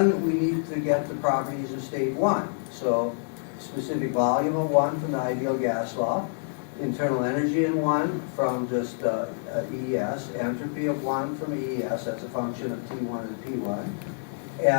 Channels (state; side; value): silent; right; digital silence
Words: we need to get the properties of state 1. So specific volume of 1 from the ideal gas law, internal energy in 1 from just EES, entropy of 1 from EES, that's a function of T1 and P1.